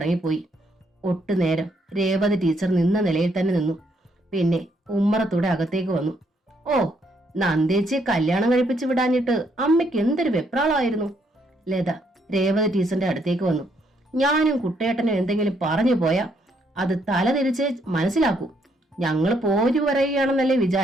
ഒട്ടുനേരം രേവതി ടീച്ചർ നിന്ന നിലയിൽ തന്നെ നിന്നു. പിന്നെ ഉമ്മറത്തൂടെ അകത്തേക്ക് വന്നു. ഓ, നന്ദേച്ചിയെ കല്യാണം കഴിപ്പിച്ചു വിടാഞ്ഞിട്ട് അമ്മയ്ക്ക് എന്തൊരു വെപ്രാളമായിരുന്നു. ലത രേവതി ടീച്ചറിന്റെ അടുത്തേക്ക് വന്നു. ഞാനും കുട്ടേട്ടനും എന്തെങ്കിലും പറഞ്ഞു പോയാ അത് തല തിരിച്ച് മനസ്സിലാക്കൂ. ഞങ്ങൾ പോരു പറയുകയാണെന്നല്ലേ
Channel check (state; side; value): normal; both; correlation 0.72